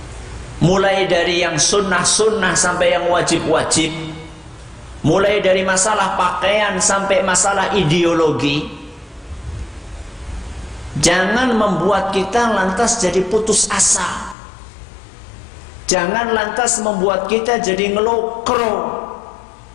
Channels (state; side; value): drops out; right; at 14.4 s